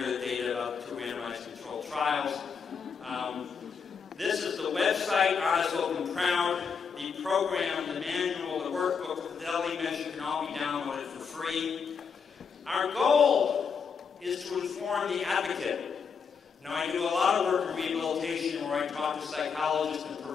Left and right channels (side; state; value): right; quieter; 6.1 dB